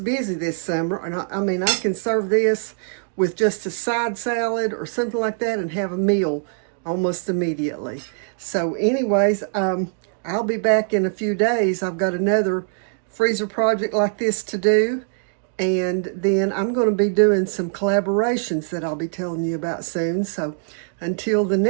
this summer. And I mean, I can serve this with just a side salad or something like that and have a meal almost immediately. So anyways, I'll be back in a few days. I've got another freezer project like this to do. And then I'm going to be doing some collaborations that I'll be telling you about soon. So until the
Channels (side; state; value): left; silent; digital silence